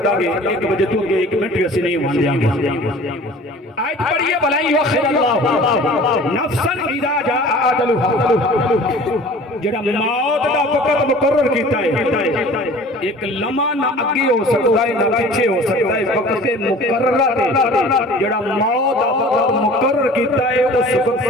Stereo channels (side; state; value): both; normal; correlation 0.45